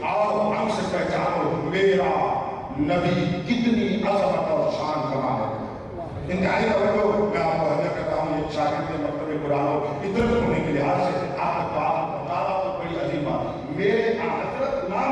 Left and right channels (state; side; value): identical; both; correlation 1.00